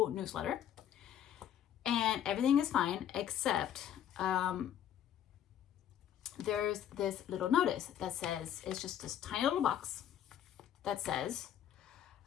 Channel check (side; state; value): right; quieter; 10.2 dB